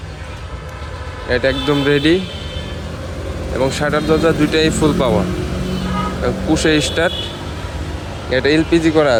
এটা একদম রেডি এবং শাটার দরজা দুইটাই ফুল পাওয়ার, পুশে স্টার্ট। এটা এলপিজি করা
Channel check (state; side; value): identical; both; correlation 1.00